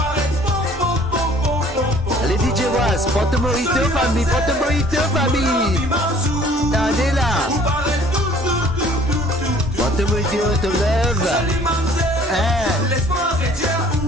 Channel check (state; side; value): normal; both; correlation 0.54